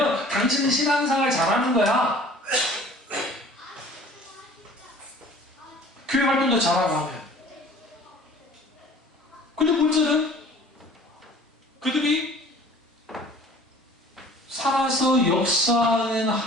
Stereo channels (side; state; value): both; normal; correlation 0.49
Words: 당신은 신앙생활 잘하는 거야. 교회 활동도 잘하고 하면. 근데 문제는 그들이 살아서 역사하는